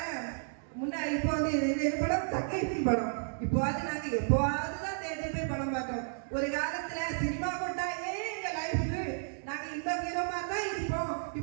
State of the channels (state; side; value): silent; left; digital silence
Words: முன்னாடி இப்போ வந்து இந்த படம் தக்கைக்கு படம் இப்போ அது நாங்க எப்போதுதான் தேட்டர் போய் படம் பார்த்தோம். ஒரு காலத்துல சினிமா கொண்டாயே எங்க லைஃபுக்கு நாங்க இந்த ஹீரோ மாதிரி தான் இருப்போம்,